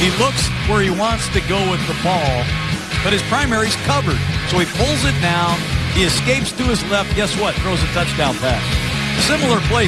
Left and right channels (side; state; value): both; identical; correlation 1.00